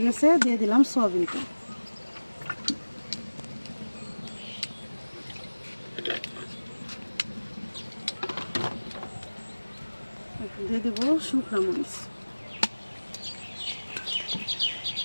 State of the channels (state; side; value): inverted; both; correlation -1.00